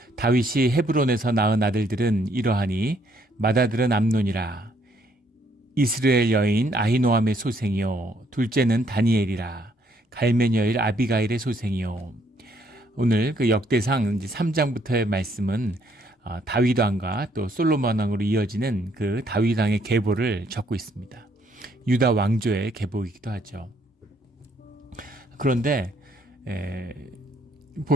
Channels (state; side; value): normal; both; correlation 0.69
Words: 다윗이 헤브론에서 낳은 아들들은 이러하니 맏아들은 암논이라, 이스라엘 여인 아히노함의 소생이요, 둘째는 다니엘이라, 갈멜 여인 아비가일의 소생이요. 오늘 그 역대상 3장부터의 말씀은 다윗 왕과 또 솔로몬 왕으로 이어지는 그 다윗 왕의 계보를 적고 있습니다. 유다 왕조의 계보이기도 하죠. 그런데